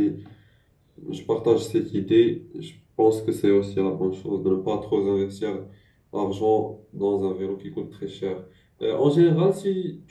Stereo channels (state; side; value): identical; both; correlation 1.00